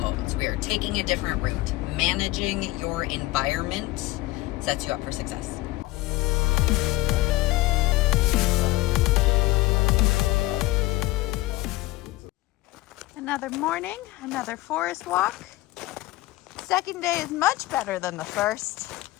So we are taking a different route. Managing your environment sets you up for success. Another morning, another forest walk. Second day is much better than the first.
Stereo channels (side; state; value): right; quieter; 18.7 dB